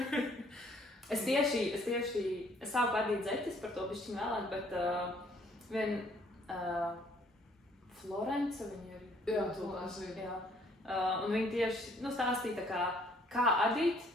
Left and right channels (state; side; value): normal; both; correlation 0.62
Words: Es sāku adīt zeķis, par to bišķiņ vēlāk, bet Florence viņa ir. Jā, Florence ir. Un viņa tieši stāstīja kā adīt,